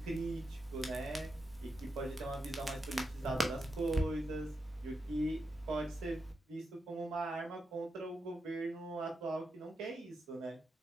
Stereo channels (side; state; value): both; normal; correlation 0.86